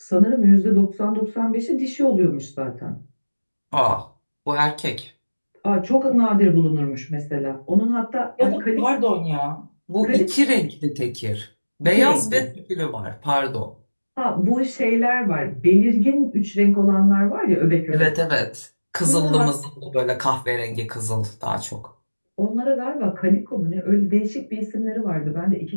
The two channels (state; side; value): inverted; both; correlation -1.00